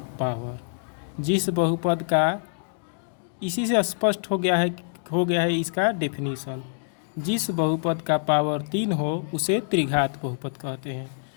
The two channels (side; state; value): right; silent; digital silence